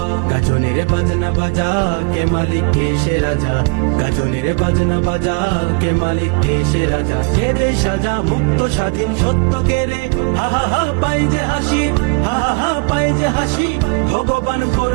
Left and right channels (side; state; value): left; quieter; 32.8 dB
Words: গাজনের বাজনা বাজা, কে মালিক কে সে রাজা, গাজনের বাজনা বাজা, কে মালিক কে সে রাজা, কে দেয় সাজা মুক্ত স্বাধীন সত্য কে রে, হা হা হা পাই যে হাসি, হা হা হা পাই যে হাসি, ভগবান